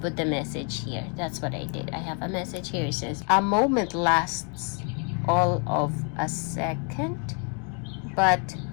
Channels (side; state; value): right; quieter; 38.5 dB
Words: put the message here. That's what I did. I have a message here. It says, a moment lasts all of a second, but